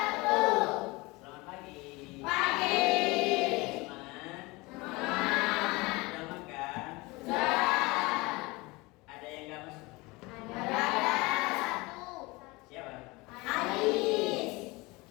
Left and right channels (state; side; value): quieter; right; 23.7 dB